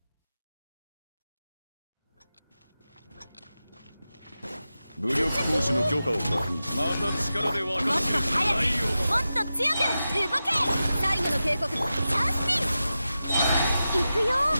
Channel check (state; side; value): inverted; both; correlation -0.92